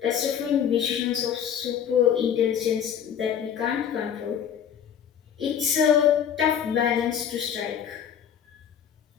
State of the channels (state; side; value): quieter; right; 8.7 dB